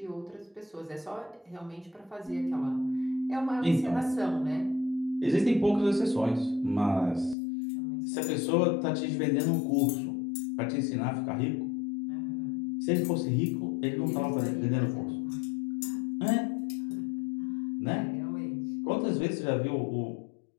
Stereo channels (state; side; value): drops out; right; at 7.4 s